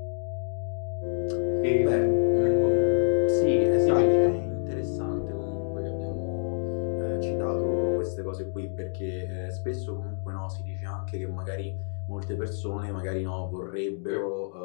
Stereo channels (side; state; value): right; silent; digital silence